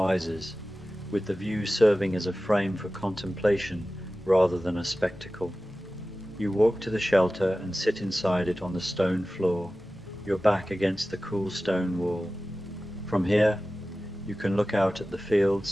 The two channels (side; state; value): both; normal; correlation 0.96